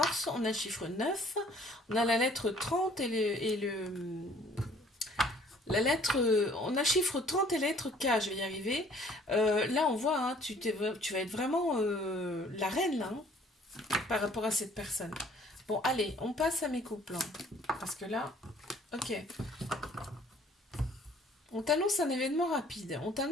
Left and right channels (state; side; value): normal; both; correlation 0.57